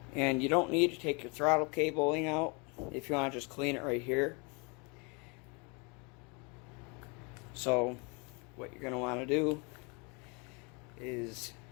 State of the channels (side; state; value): right; quieter; 31.6 dB